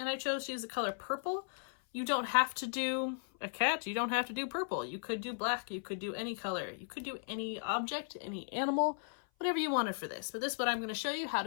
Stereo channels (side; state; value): right; silent; 54 dB below the other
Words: I chose to use the color purple. You don't have to do a cat, you don't have to do purple. You could do black, you could do any color, you could do any object, any animal, whatever you wanted for this. But this is what I'm going to show you how